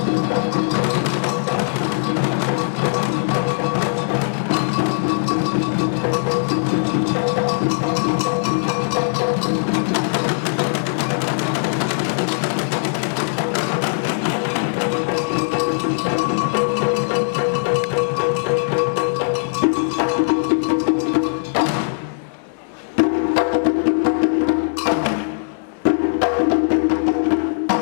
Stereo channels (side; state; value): right; silent; digital silence